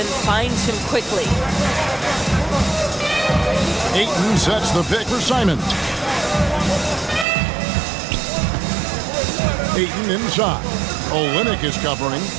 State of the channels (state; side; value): drops out; left; at 7.2 s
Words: finds him quickly. Ayton sets the pick for Simons. Ayton inside. Olynyk is covering.